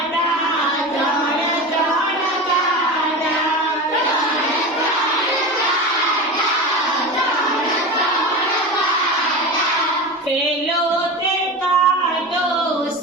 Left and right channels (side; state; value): both; normal; correlation 0.27